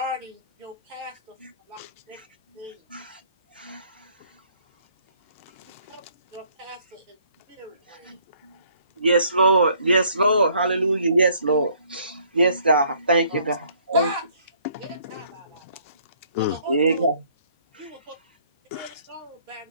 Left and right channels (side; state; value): both; inverted; correlation -0.63